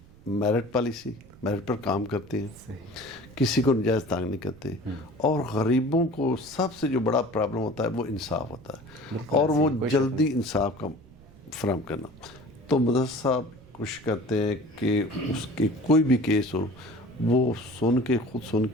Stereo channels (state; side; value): noise; right; rumble, 23 dB below the sound